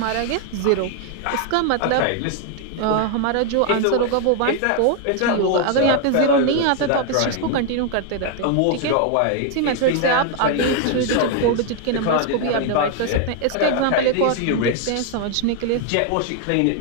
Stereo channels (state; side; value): different; both; correlation 0.00